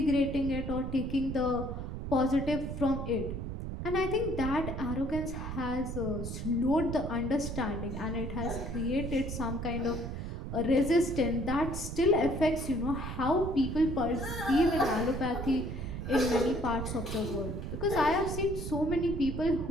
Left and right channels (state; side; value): noise; right; rumble, 5 dB below the sound